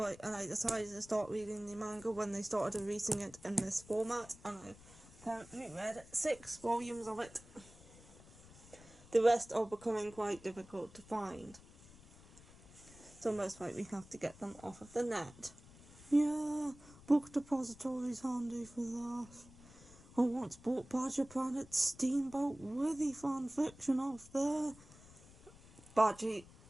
I decided to start reading the manga when they started releasing it in this format, and I've currently read 6 volumes of it. The rest are becoming quite difficult to find, so most likely have to get them off of the net. Yeah, Book Depository's handy for that. I once bought Badger Planet's Steamboat Withy fanfiction off there. Badgy,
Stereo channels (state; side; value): noise; left; rumble, 21 dB below the sound